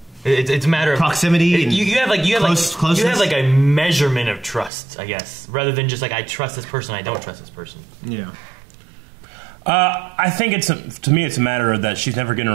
It's a matter of proximity. And you have closeness? like a measurement of trust, I guess, rather than just like I trust this person, I don't trust this person. Yeah. I think to me it's a matter of that she's never given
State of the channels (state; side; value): drops out; left; at 4.7 s